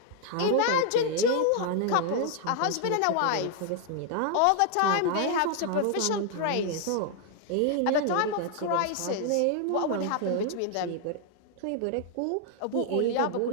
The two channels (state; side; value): different; both; correlation 0.00